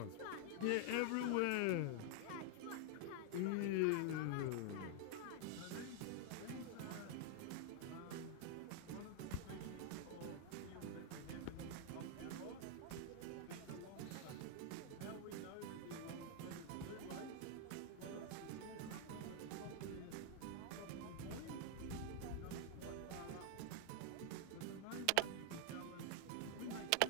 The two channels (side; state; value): both; different; correlation 0.00